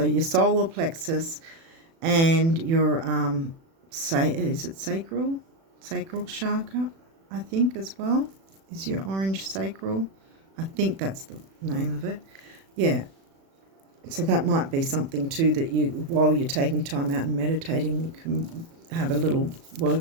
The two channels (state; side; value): late; left; 36 ms